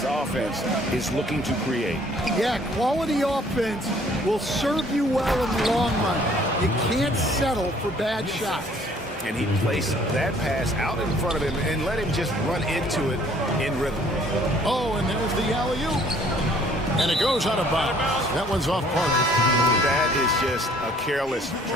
offense is looking to create. Yeah, quality offense will serve you well in the long run. You can't settle for bad shots. And he placed that pass out in front of him and let him just run into it in rhythm. Oh, and there's the alley-oop. And it goes out of bounds. That one's off Parker. That is just a careless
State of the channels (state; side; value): normal; both; correlation 0.58